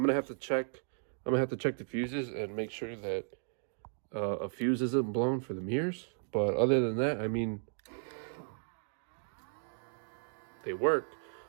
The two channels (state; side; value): silent; left; digital silence